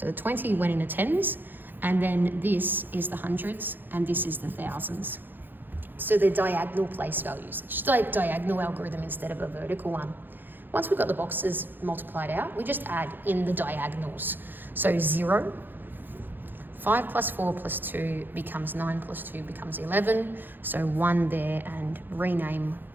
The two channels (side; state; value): left; late; 0.092 ms